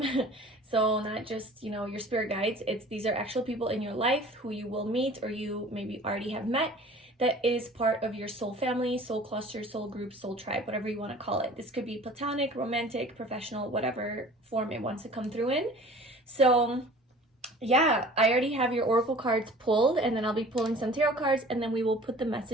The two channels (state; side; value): normal; both; correlation 0.46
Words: So not just, you know, your spirit guides. These are actual people in your life who you will meet or you maybe already have met, that is part of your soul family, soul cluster, soul group, soul tribe, whatever you want to call it. This could be platonic, romantic, professional, whatever form it wants to come through in. So yeah, I already have your oracle cards pulled, and then I'll be pulling some tarot cards, and then we will put the